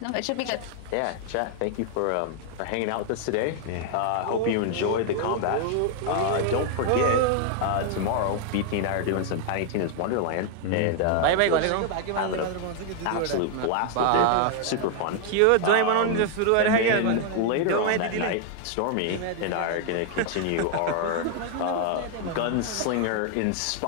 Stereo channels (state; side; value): different; both; correlation 0.00